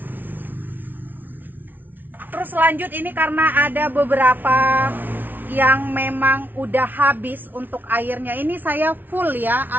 Terus lanjut ini karena ada beberapa yang memang udah habis untuk airnya, ini saya full ya,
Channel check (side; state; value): left; late; 0.087 ms